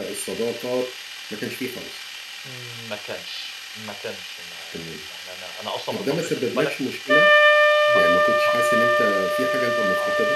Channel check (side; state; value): both; identical; correlation 1.00